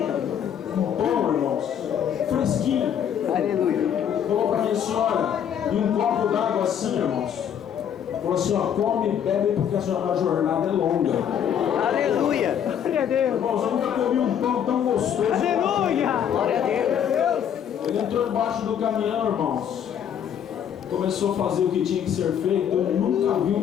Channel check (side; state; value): right; quieter; 8.9 dB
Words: Bom, irmãos, fresquinho. Aleluia. Falou para minha senhora, e um copo d'água assim, irmãos. Falou assim, ó, come e bebe porque a jornada é longa. Aleluia. Irmãos, eu nunca comi um pão tão gostoso. Glória a Deus. Ele entrou embaixo do caminhão, irmãos. Começou a fazer o que tinha que ser feito. Eu nunca vi um